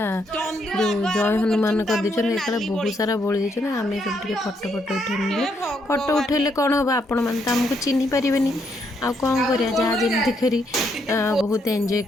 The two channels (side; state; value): both; normal; correlation 0.75